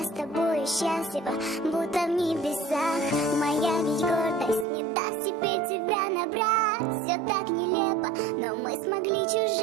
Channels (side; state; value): left; drops out; at 4.7 s